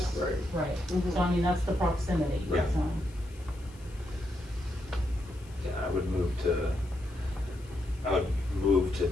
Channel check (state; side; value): noise; left; hiss, 25 dB below the sound